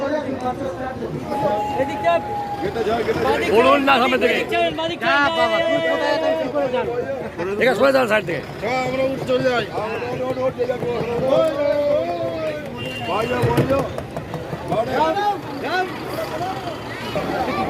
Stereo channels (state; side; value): identical; both; correlation 1.00